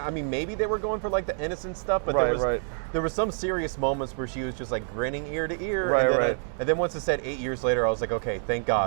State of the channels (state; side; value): silent; left; 60 dB below the other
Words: mean, maybe they were going for like the innocent stuff, but there was some serious moments where she was just like grinning ear to ear. And then once it said 8 years later, I was like, okay, thank